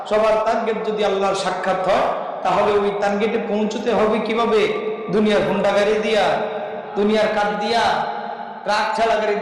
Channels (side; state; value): both; identical; correlation 1.00